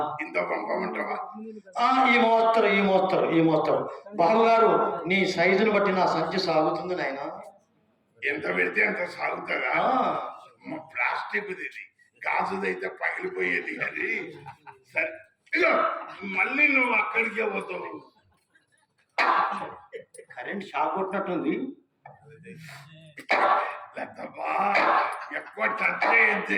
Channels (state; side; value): identical; both; correlation 1.00